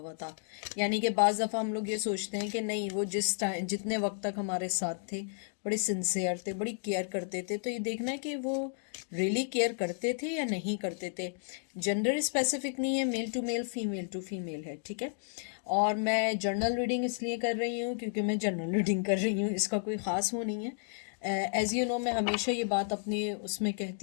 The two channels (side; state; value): right; silent; digital silence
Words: था। यानी कि बाज़ दफ़ा हम लोग ये सोचते हैं कि नहीं, वो जिस टाइम जितने वक्त तक हमारे साथ थे बड़े सिंसियर थे, बड़ी केयर करते थे। तो ये देखना है कि वो रियली केयर करते थे या नहीं करते थे। जेंडर स्पेसिफिक नहीं है, male to male, female to female है, ठीक है। और मैं जर्नल रीडिंग इसलिए कर रही हूँ क्योंकि मैं जर्नल रीडिंग कर रही हूँ, इसका कोई ख़ास वो नहीं है। एज़ यू नो, मैं हमेशा ये बात अपने उसमें